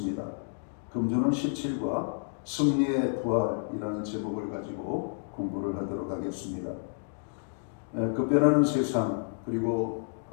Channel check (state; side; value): silent; right; digital silence